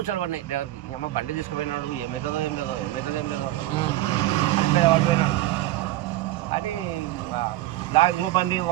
పడినాయి డ్రైవర్కి అమ్మ బండి తీసుకుపోయినాడు ఏమవుతుందో ఏం లేదో అని లారీ బండి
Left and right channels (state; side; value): quieter; left; 16.0 dB